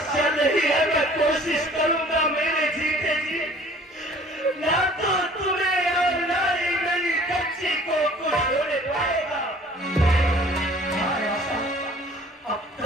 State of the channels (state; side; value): normal; both; correlation 0.51